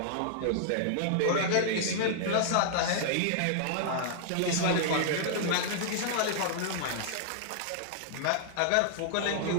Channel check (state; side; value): different; both; correlation -0.01